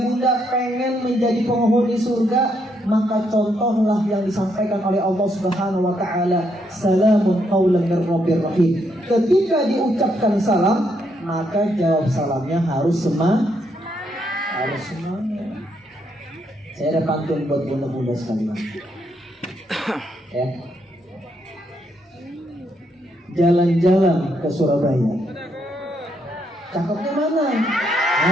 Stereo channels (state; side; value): normal; both; correlation 0.76